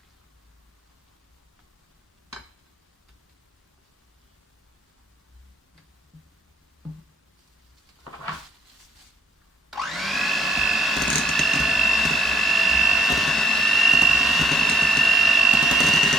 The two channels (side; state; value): both; normal; correlation 0.68